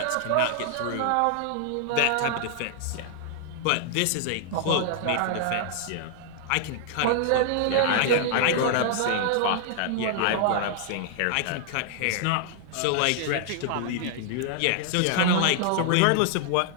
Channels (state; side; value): different; both; correlation 0.00